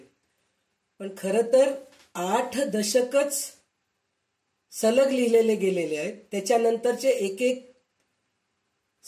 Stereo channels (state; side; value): identical; both; correlation 1.00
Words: पण खरं तर 8 दशकच सलग लिहिलेले गेलेले आहेत. त्याच्यानंतरचे एक एक